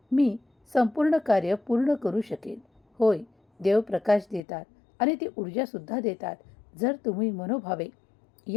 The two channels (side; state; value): right; drops out; at 4.4 s